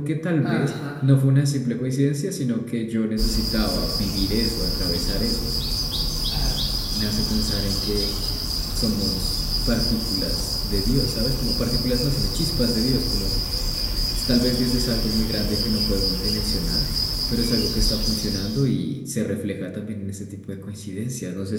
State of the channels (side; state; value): both; identical; correlation 1.00